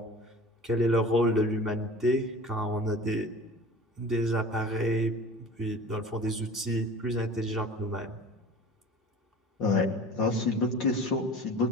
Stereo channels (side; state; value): both; normal; correlation 0.40